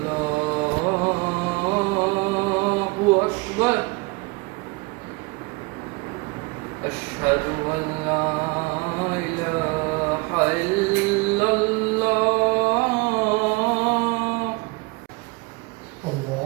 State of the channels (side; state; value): left; quieter; 26.7 dB